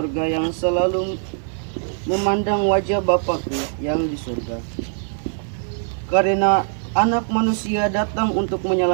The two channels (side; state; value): left; silent; digital silence